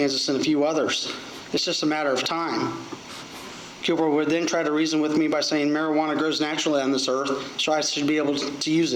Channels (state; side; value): identical; both; correlation 1.00